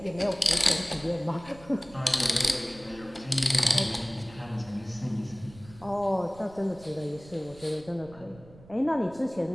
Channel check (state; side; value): noise; right; rumble, 21 dB below the sound